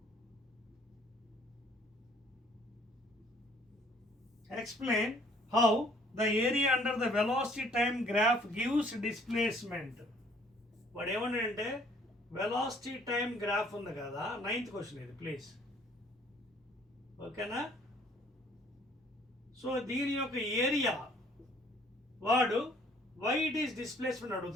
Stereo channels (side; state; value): both; normal; correlation 0.59